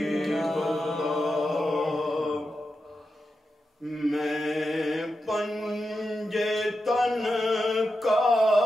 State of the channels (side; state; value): both; normal; correlation 0.89